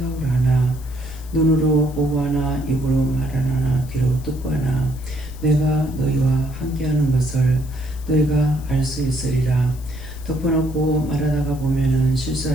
하나 눈으로 보고 하나 입으로 말하나 귀로 듣고 하나 내가 너희와 함께하는 것을 너희가 알 수 있으리라. 덮어놓고 말하다가 보면은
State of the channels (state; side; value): noise; left; hiss, 22 dB below the sound